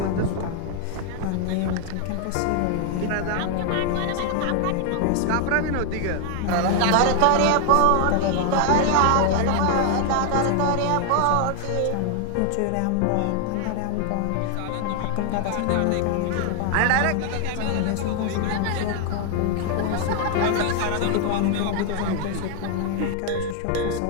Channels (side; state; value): both; different; correlation 0.00